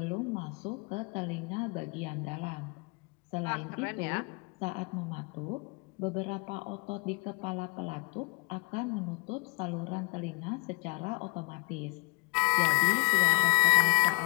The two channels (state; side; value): quieter; right; 29.8 dB